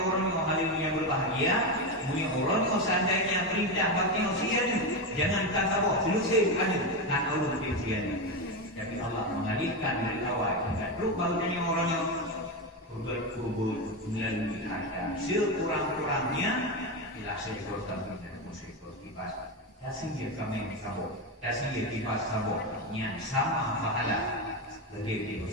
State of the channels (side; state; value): both; normal; correlation 0.13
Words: orang yang berbahagia, punya orang yang seandainya perintah bagi usia jangan sabah selesai anak kan Allah usia. Tapi Allah mengalihkan dari awal hingga terus baru tanya orang yang berkubur melalui harta sekurang-kurangnya bila seekor kambing dan seekor kibas. Dasih kami sabot, dasih kibas sabot yang sama pahala bagi